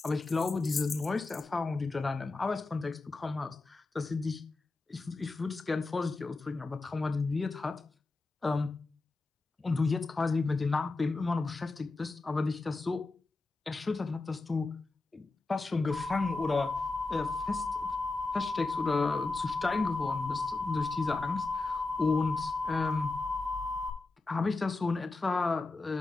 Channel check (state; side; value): quieter; right; 3.5 dB